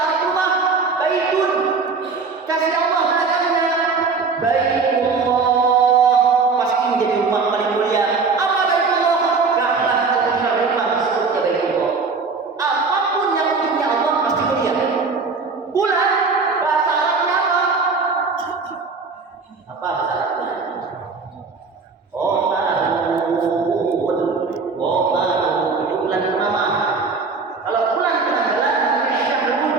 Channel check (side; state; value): left; quieter; 4.6 dB